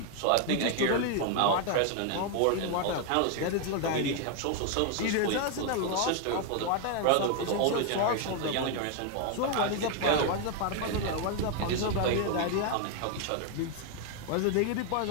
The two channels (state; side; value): different; both; correlation 0.01